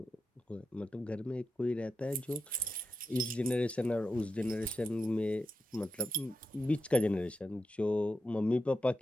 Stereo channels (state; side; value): normal; both; correlation 0.87